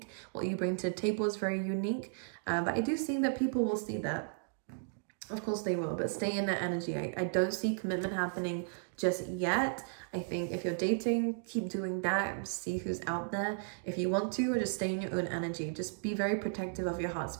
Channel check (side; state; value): left; silent; digital silence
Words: What you bring to the table is very unique. But I do see that people will see that. Of course they will, but stay in that energy. I don't see commitment happening just yet. I think if you're dating, keep doing that. See who's out there. If you want to, or just stay in your own energy. Just be very protective of your heart